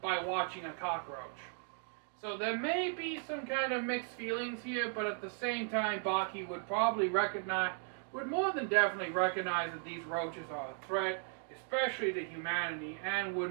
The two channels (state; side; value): silent; left; 53 dB below the other